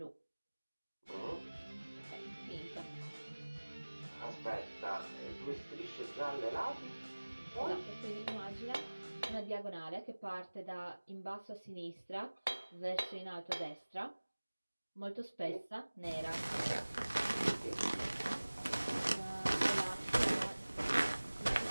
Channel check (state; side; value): inverted; both; correlation -1.00